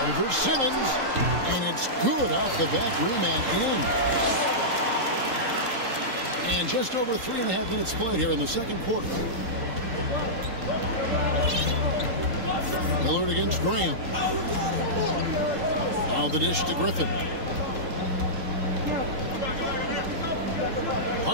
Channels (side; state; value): left; late; 3.8 ms